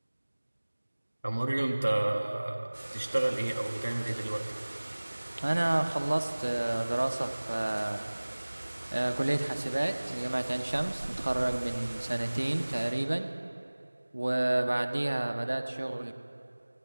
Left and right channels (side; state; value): both; inverted; correlation -1.00